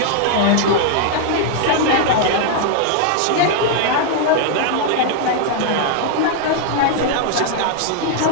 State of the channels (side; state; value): both; different; correlation 0.00